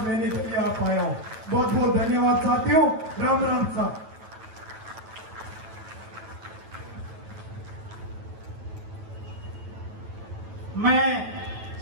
लेने के लिए आप आया हूं। बहुत बहुत धन्यवाद साथियों। राम राम साहब। मैं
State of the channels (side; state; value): left; late; 9.1 ms